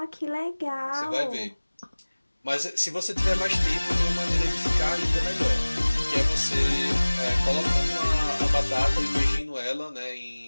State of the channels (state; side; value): inverted; both; correlation -1.00